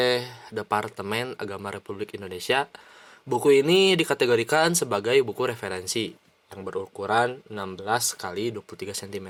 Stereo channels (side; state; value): both; identical; correlation 1.00